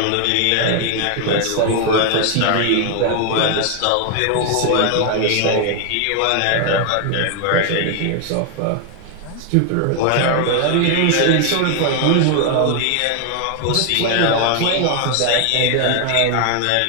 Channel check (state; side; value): different; both; correlation 0.00